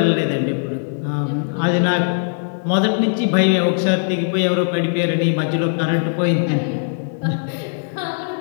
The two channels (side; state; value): right; silent; digital silence